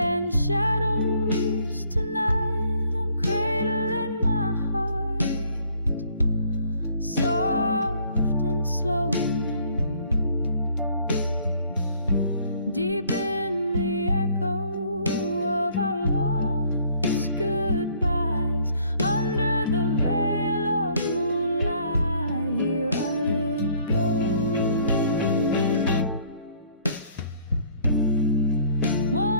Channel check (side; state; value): both; inverted; correlation -0.59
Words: shadows tonight, I'm cradling my heart, soft and slow. Deep in the echo of our lost goodbyes, under the veil of moonlight, here I let go.